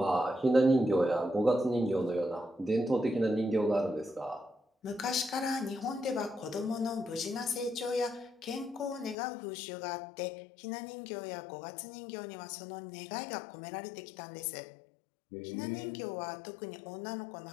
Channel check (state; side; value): drops out; right; at 9.2 s